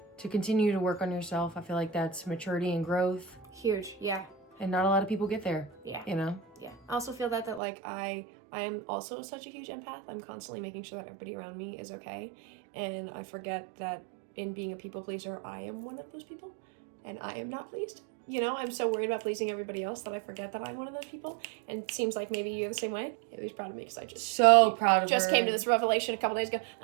to continue to work on yourself. I feel like that's maturity and growth. Huge, yeah. And not a lot of people get there. Yeah. You know? Yeah. I also feel that like I am also such a huge empath. I'm constantly making sure that everybody around me is okay. And I forget that in being a people pleaser, I am one of those people. And I am not pleased. You know, I'm so worried about pleasing everybody else that I forget that I'm one of those people. And it seems like maybe you're the same way. Haley's proud of me because I just came to this revelation a couple days ago.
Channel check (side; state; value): left; drops out; at 7.6 s